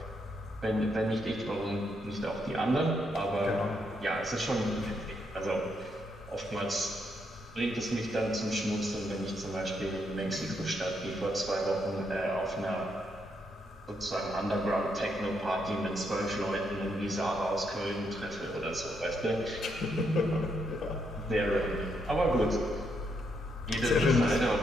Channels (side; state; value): both; normal; correlation 0.77